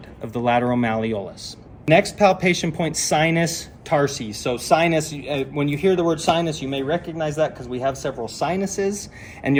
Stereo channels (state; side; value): identical; both; correlation 1.00